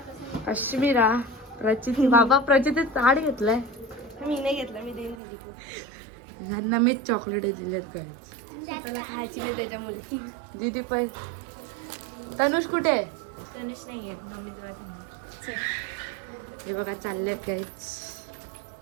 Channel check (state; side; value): drops out; left; at 5.2 s